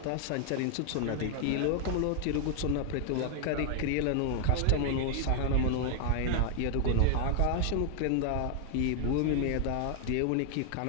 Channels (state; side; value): different; both; correlation 0.00